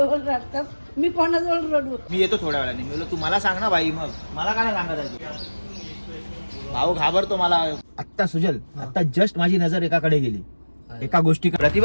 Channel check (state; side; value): inverted; both; correlation -1.00